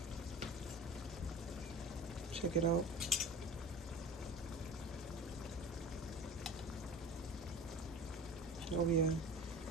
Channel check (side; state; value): both; normal; correlation 0.36